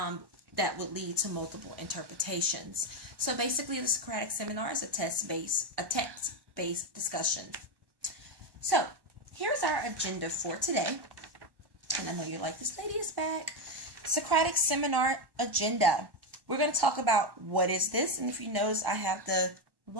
would lead to multiple interpretations. So basically the Socratic Seminar is a text-based discussion. So here's our agenda for today. And I know you're like, this lady is back. Socratic Seminar agenda. We're going to talk about what is this. And if you notice, I have the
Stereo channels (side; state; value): left; late; 1.1 ms